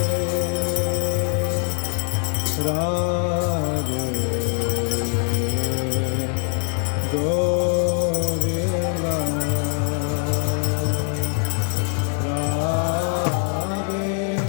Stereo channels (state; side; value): quieter; right; 38.9 dB